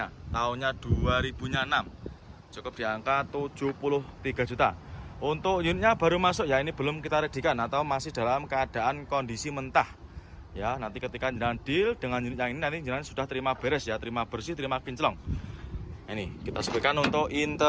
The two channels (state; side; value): identical; both; correlation 1.00